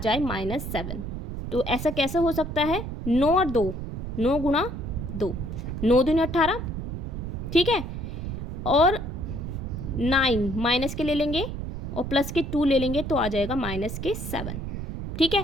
-7। तो ऐसा कैसे हो सकता है, 9 और 2, 9 गुणा 2, 9 दूनी 18, ठीक है। और 9 माइनस के ले लेंगे और प्लस के 2 ले लेंगे तो आ जाएगा माइनस के 7, ठीक है।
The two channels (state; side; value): noise; right; rumble, 6 dB below the sound